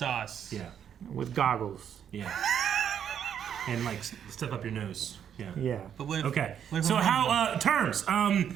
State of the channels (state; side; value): quieter; left; 8.8 dB